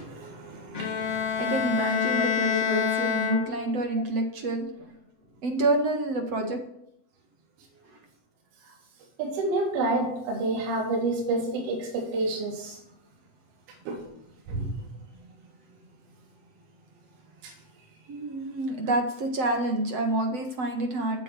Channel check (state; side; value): late; left; 7.9 ms